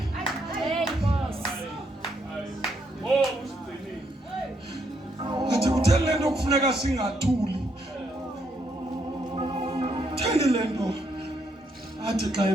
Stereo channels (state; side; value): normal; both; correlation 0.75